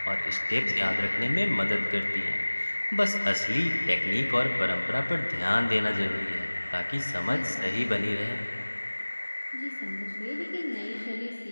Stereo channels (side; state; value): both; inverted; correlation -1.00